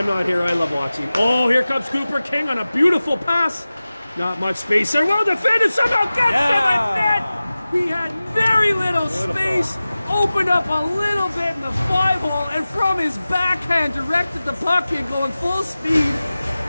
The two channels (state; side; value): inverted; both; correlation -0.96